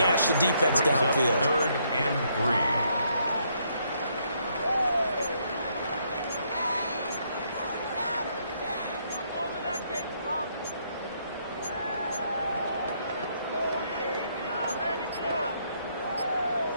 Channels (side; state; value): both; inverted; correlation -0.72